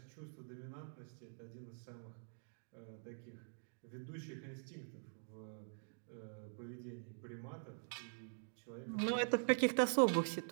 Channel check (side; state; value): left; silent; digital silence